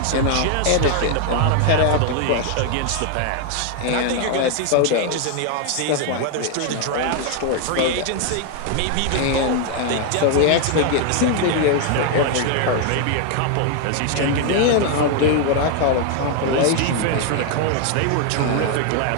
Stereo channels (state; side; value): different; both; correlation 0.00